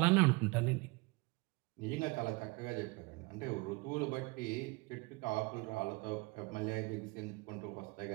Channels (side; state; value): left; quieter; 25.5 dB